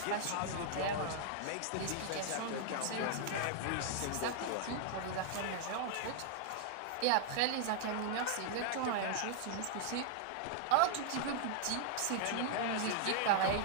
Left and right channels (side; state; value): both; different; correlation -0.01